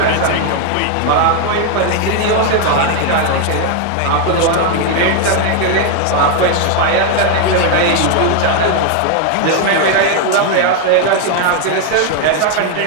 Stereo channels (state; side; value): different; both; correlation 0.01